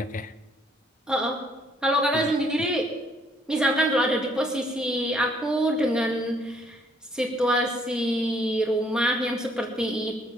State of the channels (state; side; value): normal; both; correlation 0.66